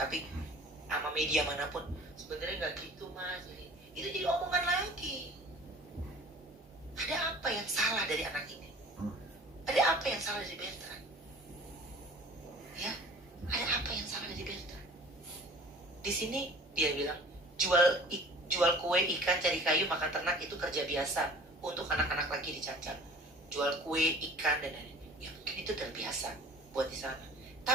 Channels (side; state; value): both; normal; correlation 0.45